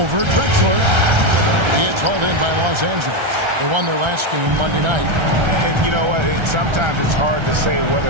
Over Drexler. It's hauled in by Los Angeles. They won their last game Monday night. And you know what? Sometimes it's hard to say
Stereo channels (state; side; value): late; left; 1.3 ms